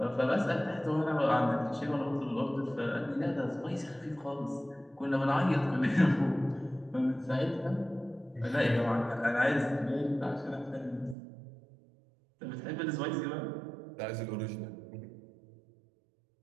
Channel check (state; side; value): drops out; left; at 11.2 s